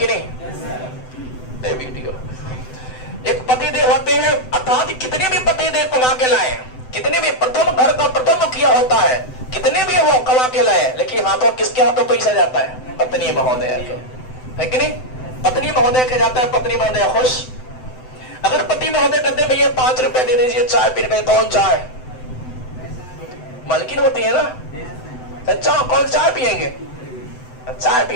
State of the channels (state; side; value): late; right; 7.9 ms